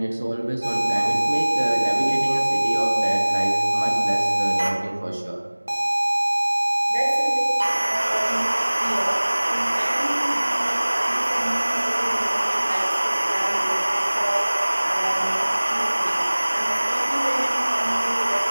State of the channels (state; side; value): inverted; both; correlation -1.00